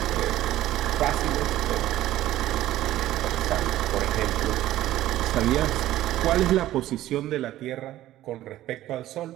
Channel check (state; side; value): quieter; left; 14.2 dB